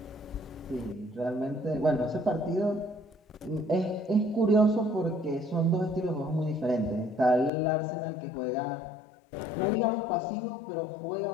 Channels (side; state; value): right; drops out; at 7.5 s